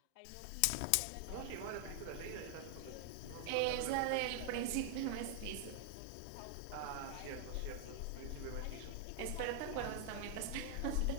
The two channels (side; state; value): both; different; correlation 0.00